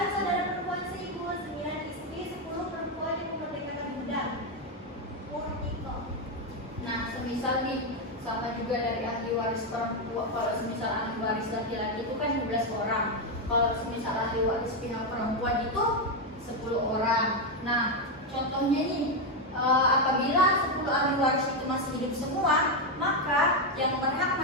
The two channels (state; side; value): normal; both; correlation 0.05